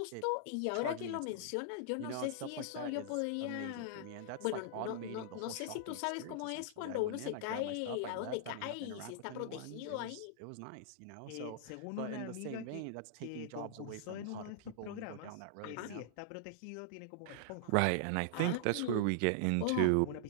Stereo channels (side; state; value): both; different; correlation -0.01